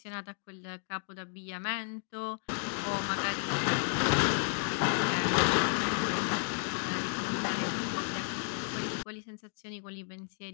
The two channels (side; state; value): right; silent; 56 dB below the other